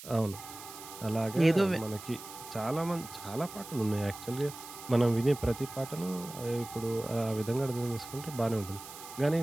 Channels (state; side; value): noise; right; hiss, 14 dB below the sound